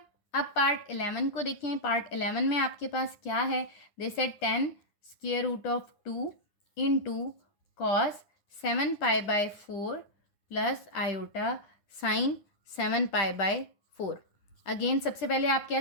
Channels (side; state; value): right; late; 10 ms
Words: अब पार्ट 11 को देखें। पार्ट 11 में आपके पास क्या है, they said 10 √2 into cos 7 pi by 4 plus iota sign 7 pi by 4। Again सबसे पहले आप क्या